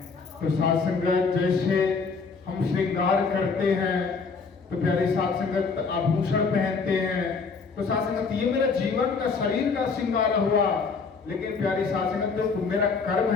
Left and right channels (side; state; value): right; quieter; 4.9 dB